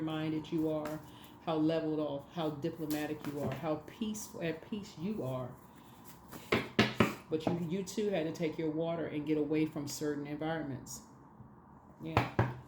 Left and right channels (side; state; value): both; identical; correlation 1.00